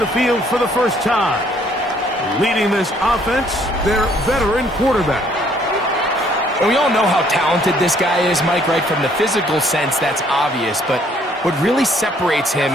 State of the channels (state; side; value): normal; both; correlation 0.63